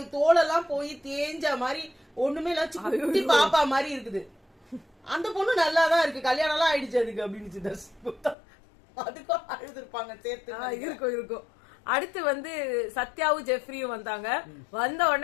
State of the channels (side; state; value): right; drops out; at 8.3 s